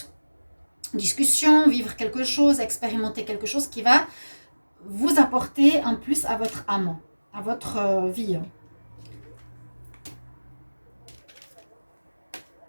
Discussion, vivre quelque chose, expérimenter quelque chose qui va vous apporter un plus à votre âme, à votre vie.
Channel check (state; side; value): inverted; both; correlation -1.00